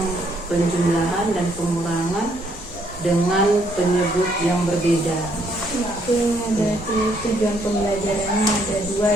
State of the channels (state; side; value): normal; both; correlation 0.69